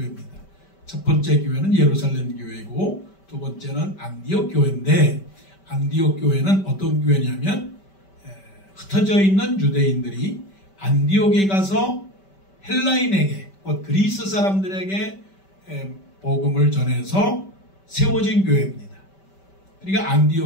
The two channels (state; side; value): late; right; 5.2 ms